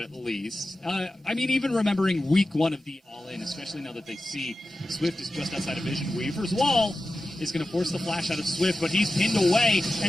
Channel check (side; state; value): both; normal; correlation 0.93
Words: least. I mean, even remembering week 1 of the All-In, especially now that they see Swift is just outside of vision. Weaver's wall is going to force the flash out of Swift, but he's pinned away